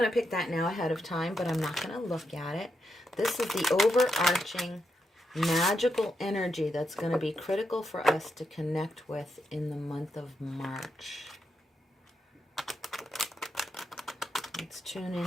to pick that now ahead of time, but I'm not going to look at it. This is the overarching magical energy that's going to be critical for us to connect with in the month of March. Let's tune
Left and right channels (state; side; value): normal; both; correlation 0.83